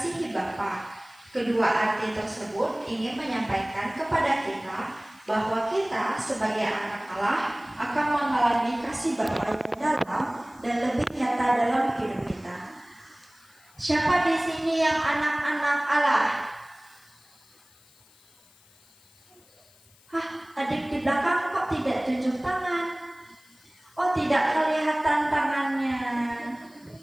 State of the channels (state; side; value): noise; left; hiss, 29 dB below the sound